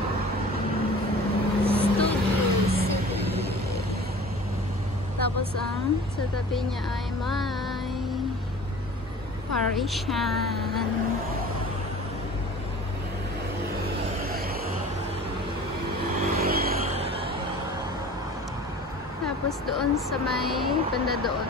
Tapos ang sa tabi niya ay may Parisian. Tapos doon sa may banda doon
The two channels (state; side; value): normal; both; correlation 0.42